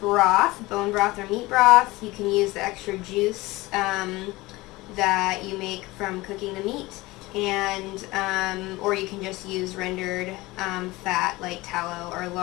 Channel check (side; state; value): right; quieter; 20.6 dB